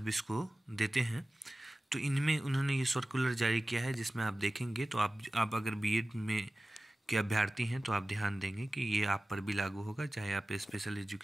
को देते हैं। तो इनमें उन्होंने ये सर्कुलर जारी किया है जिसमें आप देखेंगे तो आप अगर बीएड में के अभ्यर्थी हैं तो आप ध्यान देंगे कि ये आप पर भी लागू होगा, चाहे आप स्पेशल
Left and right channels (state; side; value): normal; both; correlation 0.96